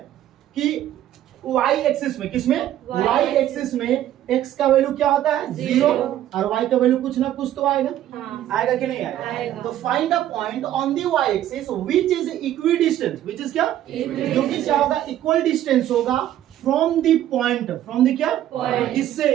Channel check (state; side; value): quieter; left; 12.3 dB